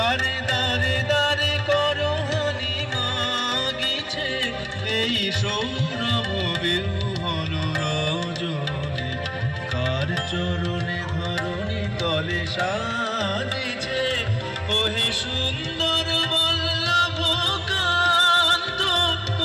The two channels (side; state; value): both; identical; correlation 1.00